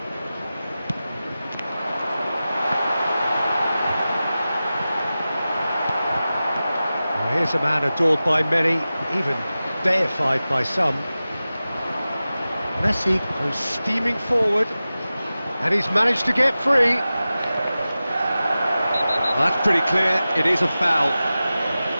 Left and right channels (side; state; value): both; inverted; correlation -0.95